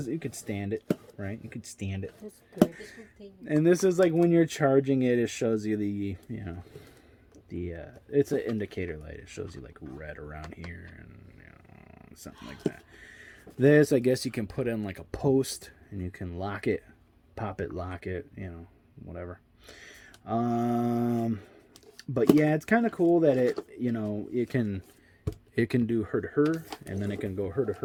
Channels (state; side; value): identical; both; correlation 1.00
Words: You could stand it, right? You could stand it. That's good. And this is like when you're charging it, it shows you the, it's an indicator light. It shows you like red around here and something like that. This, I guess you can put in like a post and you can lock it, pop it, lock it, whatever. But yeah, it's kind of cool that it can do her to her, and then it can go her to